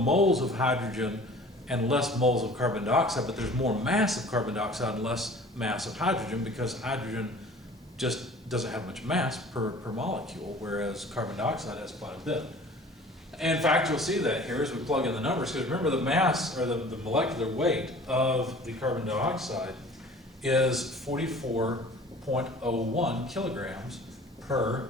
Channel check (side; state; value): both; normal; correlation 0.46